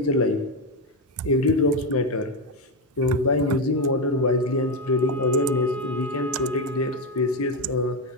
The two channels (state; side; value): normal; both; correlation 0.09